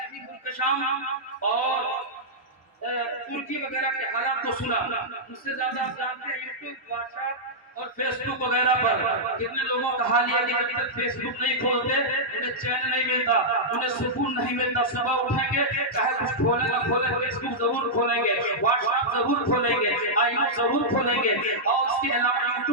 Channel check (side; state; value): both; normal; correlation -0.09